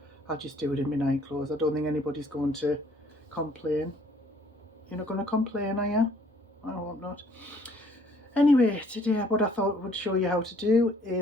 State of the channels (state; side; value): normal; both; correlation 0.61